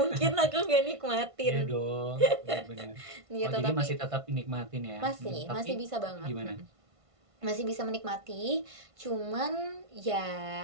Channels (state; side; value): late; left; 1.5 ms